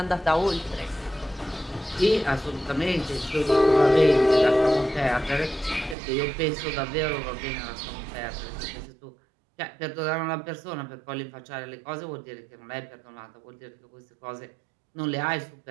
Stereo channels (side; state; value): left; drops out; at 6.0 s